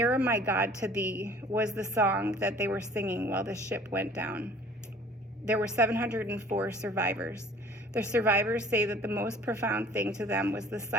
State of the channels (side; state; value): both; normal; correlation 0.50